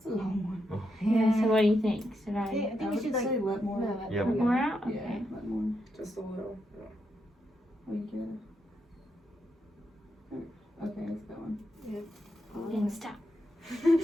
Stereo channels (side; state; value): both; normal; correlation 0.82